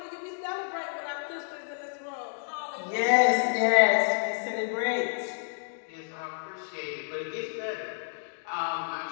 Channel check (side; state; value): right; silent; digital silence